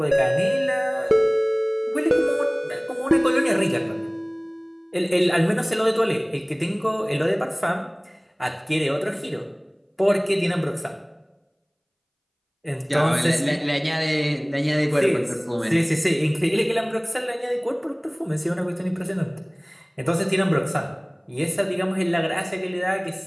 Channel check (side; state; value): both; identical; correlation 1.00